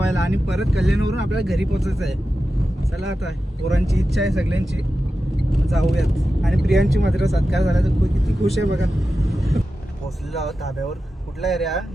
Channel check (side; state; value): both; normal; correlation 0.92